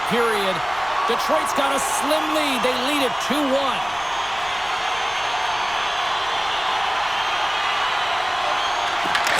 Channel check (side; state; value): left; noise; rumble, 22 dB below the sound